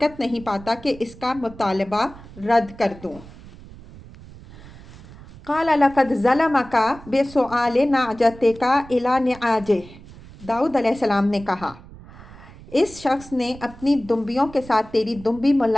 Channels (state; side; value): noise; right; rumble, 19 dB below the sound